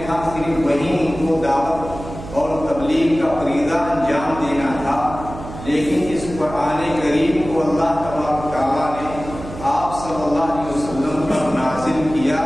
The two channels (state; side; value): noise; right; hum, 12 dB below the sound